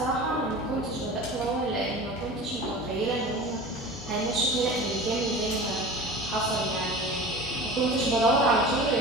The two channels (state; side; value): normal; both; correlation 0.36